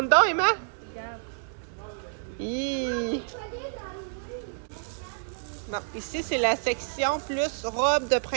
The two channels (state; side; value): silent; left; digital silence